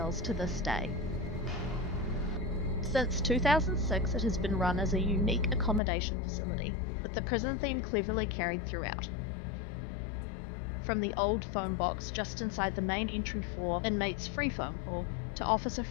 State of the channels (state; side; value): drops out; right; at 5.8 s